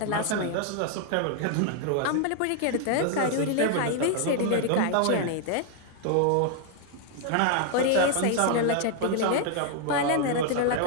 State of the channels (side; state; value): both; different; correlation 0.00